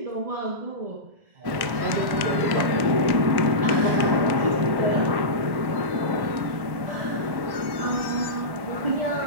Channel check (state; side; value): late; left; 1.1 ms